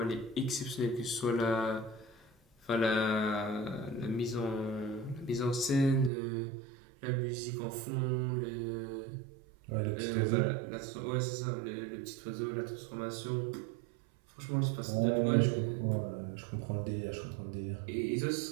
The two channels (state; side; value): drops out; left; at 6.1 s